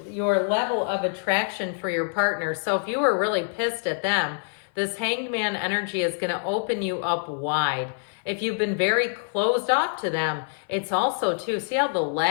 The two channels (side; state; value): right; silent; 56 dB below the other